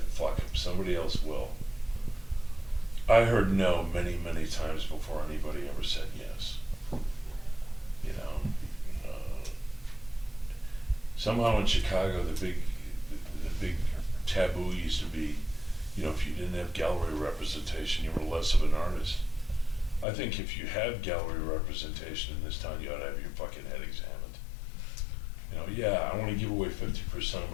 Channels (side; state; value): right; drops out; at 20.1 s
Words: fuck them. Somebody else will. I heard no many, many times before anybody ever said yes. You know, somehow in Chicago, the big taboo used to be, you know, if you didn't have gallery representation, you were less of an artist. I think if you have gallery representation in this town, you ought to have your fucking head examined. You know, yeah, I want to give away 50% of